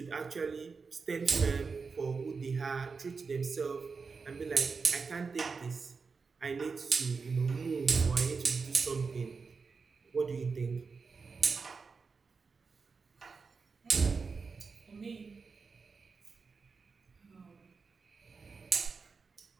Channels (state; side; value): quieter; left; 4.9 dB